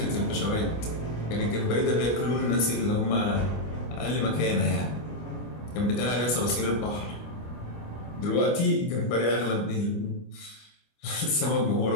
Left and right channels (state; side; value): late; right; 25 ms